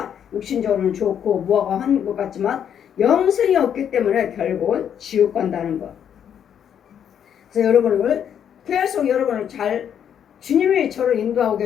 육신적으로는 좋고 무화과 하는 것 같지만 영성이 없기 때문에 결국은 지옥 간다는 것. 그래서 여러분을 계속 여러분을 잘 주님이 저를 인도하고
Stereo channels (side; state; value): right; quieter; 8.8 dB